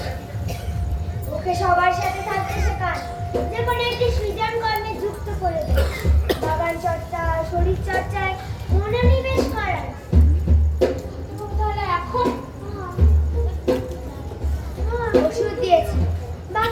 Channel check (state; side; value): identical; both; correlation 1.00